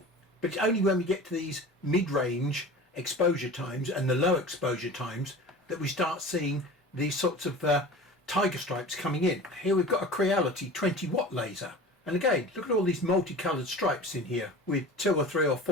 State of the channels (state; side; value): normal; both; correlation 0.37